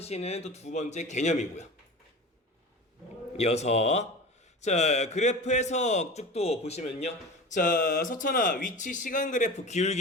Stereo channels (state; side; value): normal; both; correlation 0.33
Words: 또 두 번째 개념이고요. 이어서 자, 그래프 해석 쭉 또 보시면요. 자, 서천아, 위치 시간 그래프